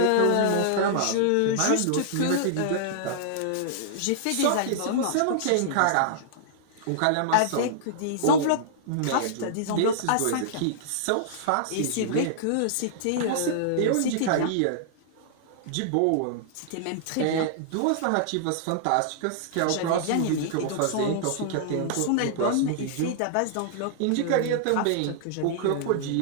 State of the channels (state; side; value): different; both; correlation -0.01